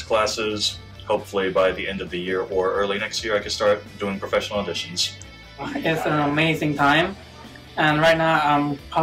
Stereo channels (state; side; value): identical; both; correlation 1.00